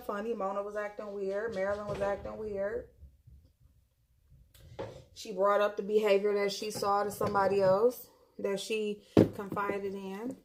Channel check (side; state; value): both; identical; correlation 1.00